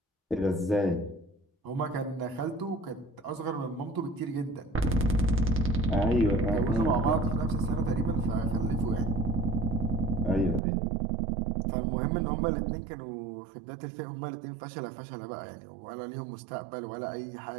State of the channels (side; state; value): left; drops out; at 10.6 s